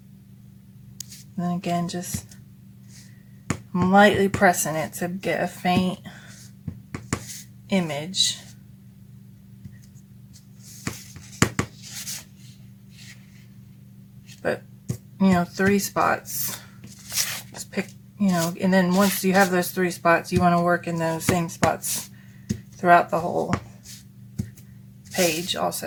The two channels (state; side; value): identical; both; correlation 1.00